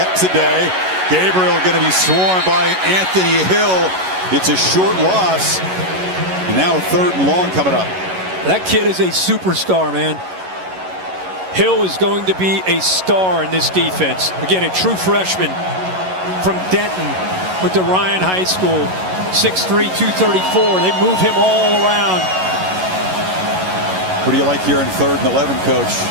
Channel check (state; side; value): late; left; 11 ms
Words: today. Gabriel going to be swarmed by Anthony Hill. It's a short loss. And now a 3rd and long coming up. That kid is a superstar, man. Hill is going to be a star in this defense. Again, a true freshman from Denton with the Ryan High School. 6'3", 234. They move him all around. What do you like here in 3rd and 11, Coach?